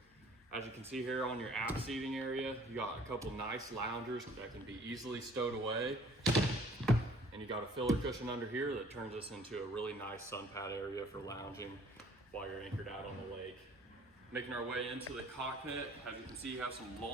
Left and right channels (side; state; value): both; normal; correlation 0.55